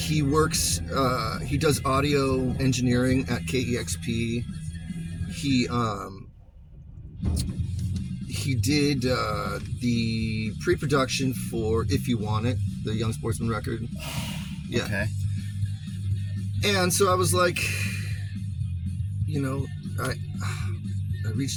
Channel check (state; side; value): identical; both; correlation 1.00